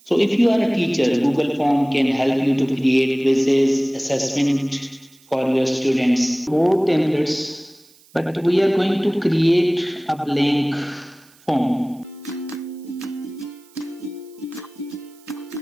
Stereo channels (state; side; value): noise; right; hiss, 29 dB below the sound